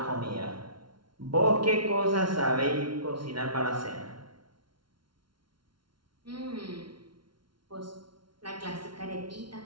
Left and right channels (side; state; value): left; late; 0.73 ms